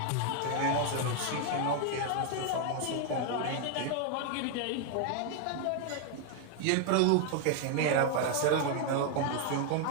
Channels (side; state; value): both; different; correlation 0.01